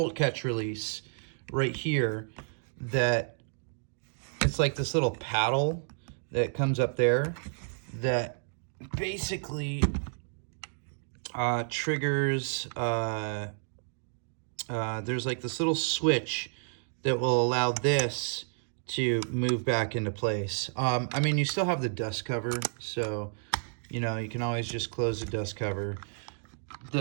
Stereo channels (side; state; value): left; silent; digital silence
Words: catch release right here, that it's like this little paddle that comes up there that basically triggers there's like this little switch that will allow this to move back into place. I mean, you still have the dust cover, so you know, you can always just close the dust cover.